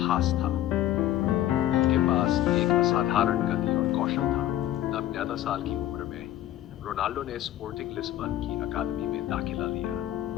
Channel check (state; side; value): quieter; right; 13.2 dB